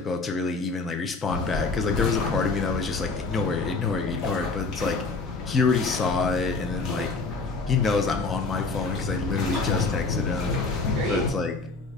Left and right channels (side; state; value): right; quieter; 3.9 dB